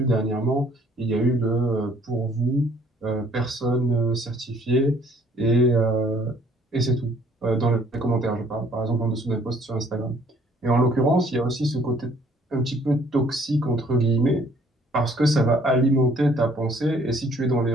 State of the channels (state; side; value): normal; both; correlation 0.60